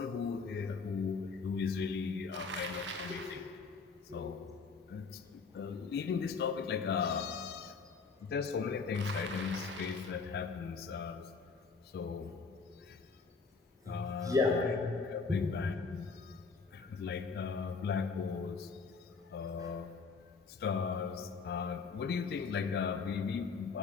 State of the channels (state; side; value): quieter; right; 4.9 dB